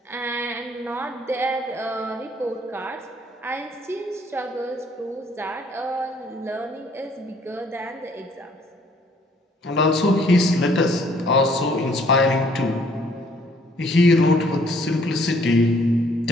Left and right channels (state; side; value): normal; both; correlation 0.62